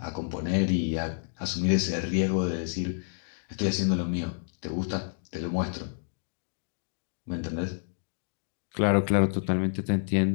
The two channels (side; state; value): right; silent; digital silence